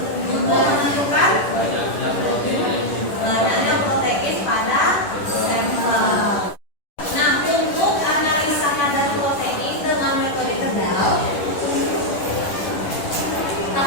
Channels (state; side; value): late; right; 10 ms